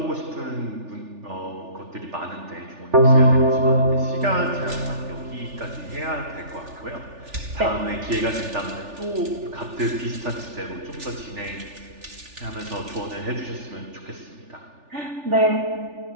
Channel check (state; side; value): late; left; 3.4 ms